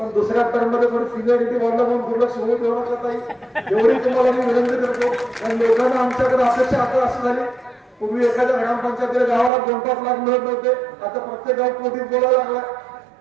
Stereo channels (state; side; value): drops out; left; at 9.5 s